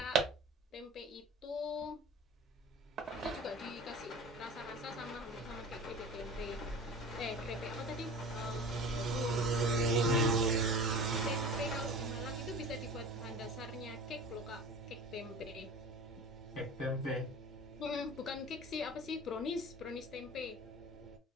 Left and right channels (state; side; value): normal; both; correlation 0.38